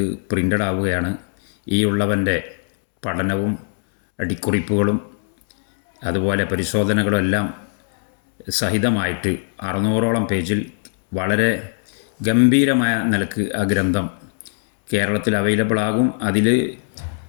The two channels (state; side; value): silent; right; digital silence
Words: പ്രിൻ്റഡ് ആവുകയാണ്. ഈ ഉള്ളവൻ്റെ പഠനവും അടിക്കുറിപ്പുകളും അതുപോലെ പരിശോധനകളും എല്ലാം സഹിതമായിട്ട് 600ഓളം പേജിൽ വളരെ ഗംഭീരമായ നിലക്ക് ആ ഗ്രന്ഥം കേരളത്തിൽ അവൈലബിൾ ആകും. അതിൽ